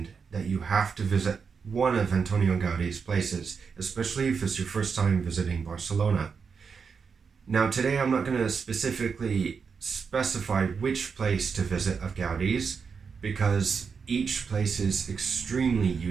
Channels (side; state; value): left; quieter; 5.8 dB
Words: that you have to visit one of Antonio Gaudi's places, especially if it's your first time visiting Barcelona. Now, today I'm not going to specifically specify which place to visit of Gaudi's, because each place is extremely